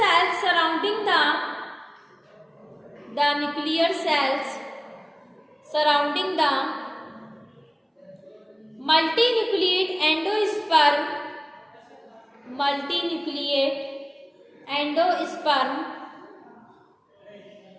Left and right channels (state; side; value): identical; both; correlation 1.00